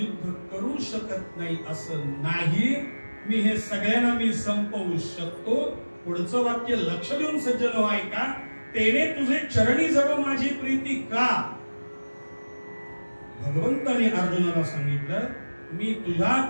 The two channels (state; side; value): inverted; both; correlation -1.00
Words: करू शकत नाही असं नाही, मी हे सगळ्यांना मी संपवू शकतो. पुढचं वाक्य लक्ष देऊन सज्जन हो ऐका. तेने तुझे चरणी जडो माझी प्रीती का. भगवंताने अर्जुनाला सांगितलं, मी